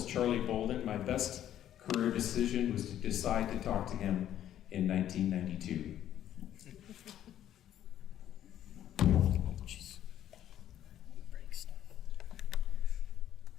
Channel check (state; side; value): quieter; right; 11.4 dB